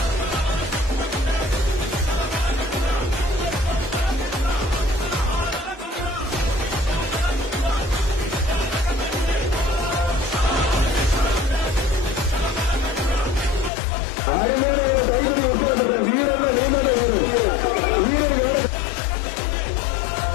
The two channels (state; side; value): drops out; right; at 13.7 s